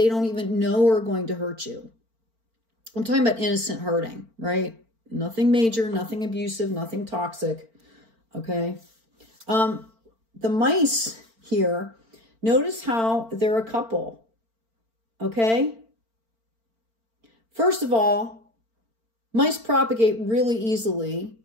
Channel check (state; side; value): late; left; 4.4 ms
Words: don't even know are going to hurt you. I'm talking about innocent hurting, right? Nothing major, nothing abusive, nothing toxic, okay? The mice here, notice how they're a couple, okay? First of all, mice propagate really easily,